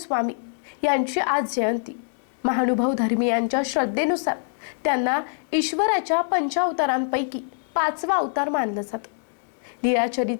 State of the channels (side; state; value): right; silent; digital silence